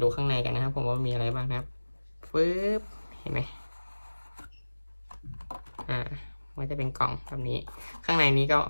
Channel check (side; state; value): both; inverted; correlation -1.00